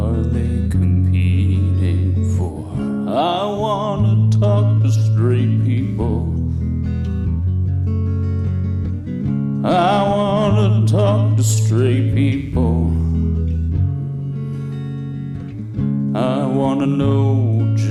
they competing for. I wanna talk to straight people. I wanna talk to straight people. I wanna know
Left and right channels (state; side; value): identical; both; correlation 1.00